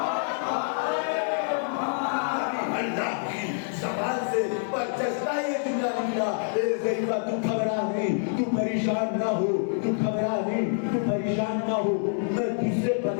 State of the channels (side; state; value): right; silent; 57 dB below the other